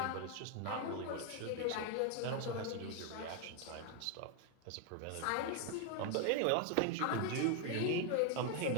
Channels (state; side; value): different; both; correlation 0.01